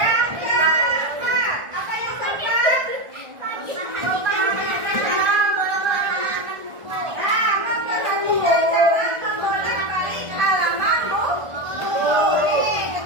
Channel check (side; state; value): left; late; 1.4 ms